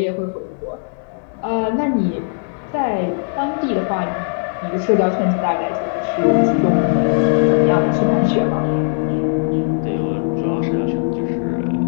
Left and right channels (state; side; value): silent; right; digital silence